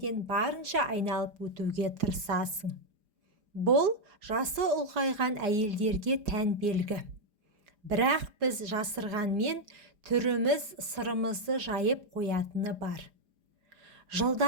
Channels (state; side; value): late; left; 4.9 ms